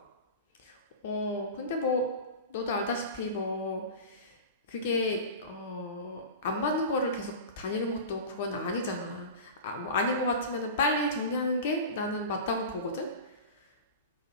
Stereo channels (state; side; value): inverted; both; correlation -0.30